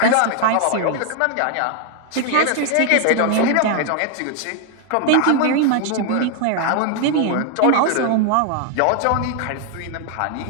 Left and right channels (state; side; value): different; both; correlation 0.00